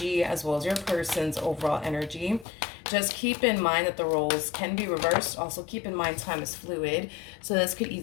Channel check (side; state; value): right; drops out; at 2.5 s